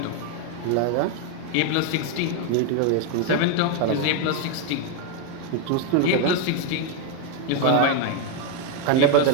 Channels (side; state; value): both; different; correlation 0.01